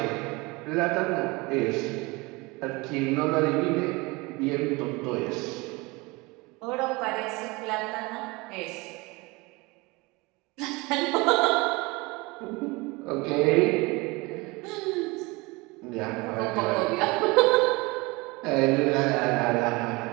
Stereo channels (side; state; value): left; quieter; 24.7 dB